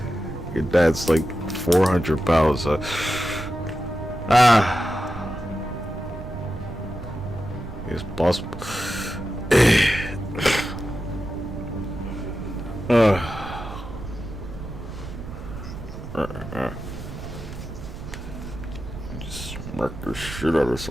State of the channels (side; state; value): right; noise; rumble, 11 dB below the sound